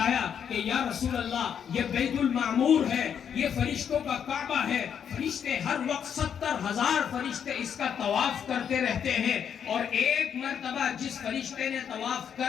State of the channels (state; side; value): quieter; right; 8.1 dB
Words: کہ یا رسول اللہ یہ بیت المعمور ہے، یہ فرشتوں کا کعبہ ہے، فرشتے ہر وقت 70,000 فرشتے اس کا طواف کرتے رہتے ہیں، اور ایک مرتبہ جس فرشتے نے طواف